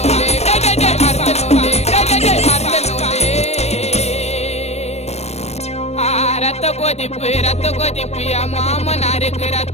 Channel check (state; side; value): late; right; 0.31 ms